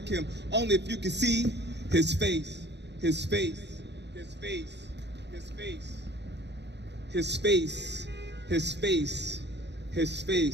him. Only if you could see his face, his face, his face, his face, his face, his face, his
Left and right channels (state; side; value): late; left; 0.50 ms